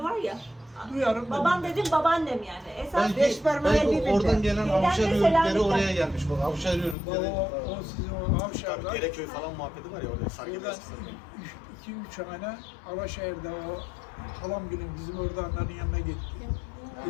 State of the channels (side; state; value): right; drops out; at 7.0 s